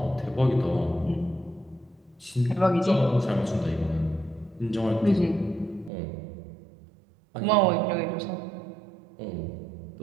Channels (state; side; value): drops out; left; at 5.9 s